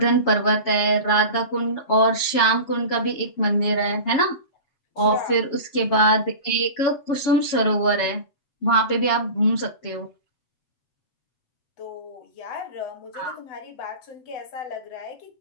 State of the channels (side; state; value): right; late; 7.2 ms